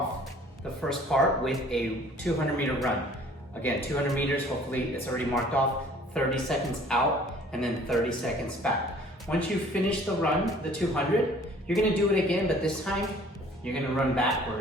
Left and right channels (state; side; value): normal; both; correlation 0.53